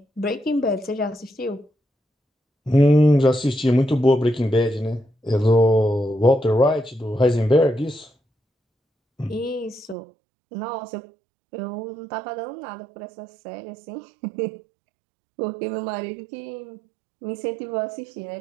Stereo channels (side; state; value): left; drops out; at 10.0 s